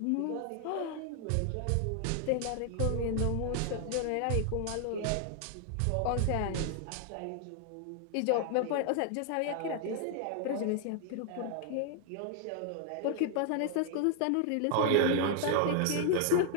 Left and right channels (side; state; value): both; different; correlation 0.00